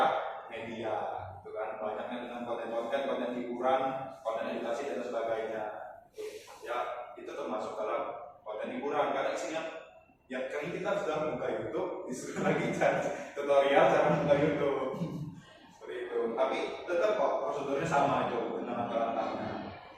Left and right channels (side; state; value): both; identical; correlation 1.00